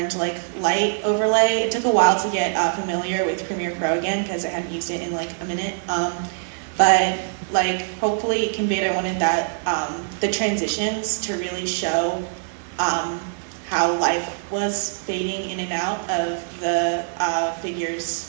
like light overlay. It took a while to get familiar with Premiere Pro again because I hadn't used it in like a minute. But like hopefully it conveyed, I wanted that the transitions to really show how life was fading in and out of the figure's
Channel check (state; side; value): silent; left; digital silence